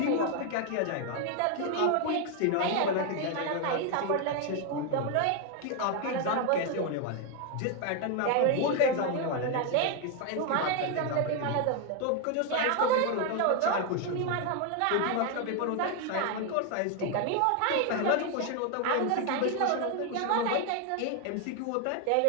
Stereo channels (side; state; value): both; different; correlation 0.01